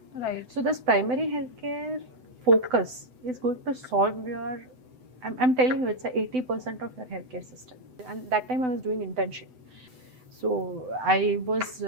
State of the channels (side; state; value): left; late; 7.9 ms